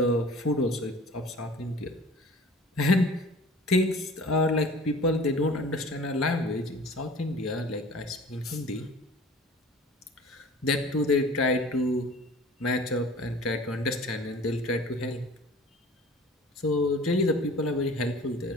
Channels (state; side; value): normal; both; correlation 0.45